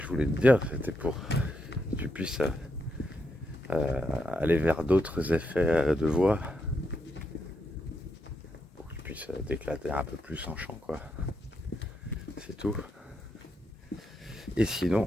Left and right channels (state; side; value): normal; both; correlation 0.82